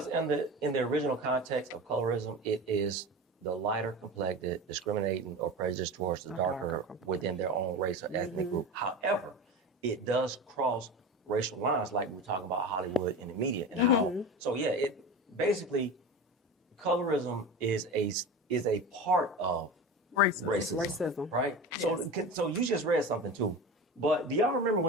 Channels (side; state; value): both; normal; correlation 0.29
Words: in the original context of colorism, it is the lighter complected discriminating or prejudice towards the darker within their own race or ethnic group. However, it does cross racial lines, like we're talking about Hollywood and the media and how. So yeah, it basically colorism is a part of racism. Right? So you just read something too. But do y'all remember